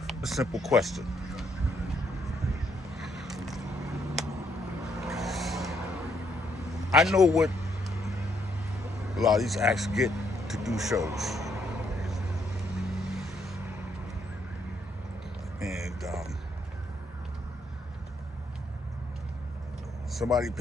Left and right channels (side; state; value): both; normal; correlation 0.73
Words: a simple question. I know what a lot of these acts get to do shows. And somebody